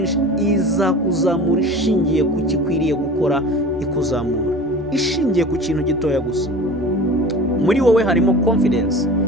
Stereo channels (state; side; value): normal; both; correlation 0.38